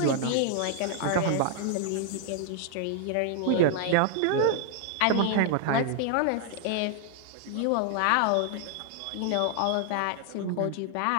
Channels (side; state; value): both; different; correlation 0.00